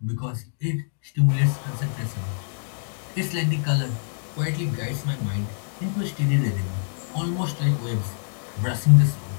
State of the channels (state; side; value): silent; right; digital silence